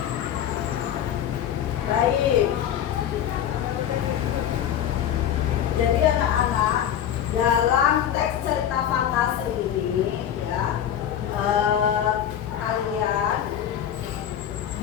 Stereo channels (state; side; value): quieter; right; 10.1 dB